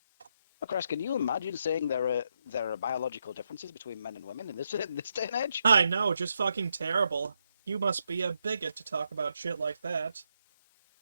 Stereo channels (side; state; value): both; inverted; correlation -0.80